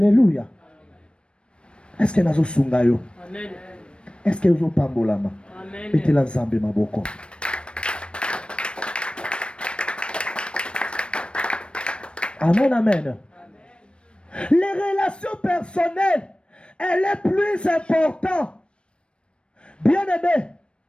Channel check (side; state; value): right; late; 0.057 ms